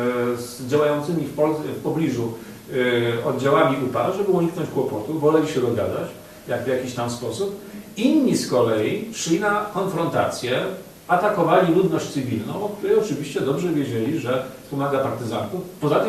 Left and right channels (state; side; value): identical; both; correlation 1.00